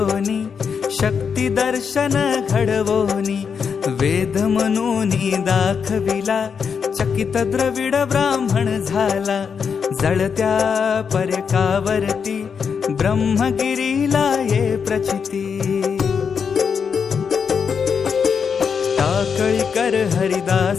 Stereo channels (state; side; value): quieter; right; 6.4 dB